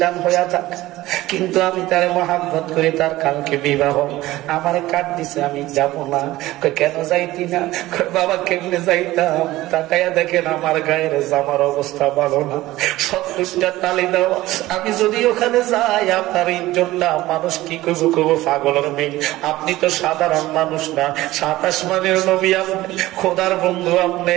হইয়া থাকে কিন্তু আমি তার মহাব্বত করি তার কালকে বিবাহ আমার কাট দিছে আমি যাব না কেন যাইতি না বাবা কেমনে যাইতাম তাকাইয়া দেখেন আমার গায়ের জামার অবস্থা ভালো না 70টা তালি দেওয়া আমি যদি ওখানে যাই আপনার ইজ্জতটা মানুষ কি করবো করবো পাগলের মেয়ে আপনি তো সাধারণ মানুষ না 7 আসমানের নবী আপনি খোদার বন্ধু আপনি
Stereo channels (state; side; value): quieter; left; 17.1 dB